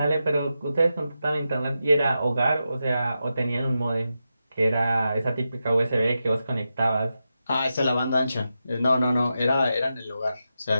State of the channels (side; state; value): both; inverted; correlation -0.89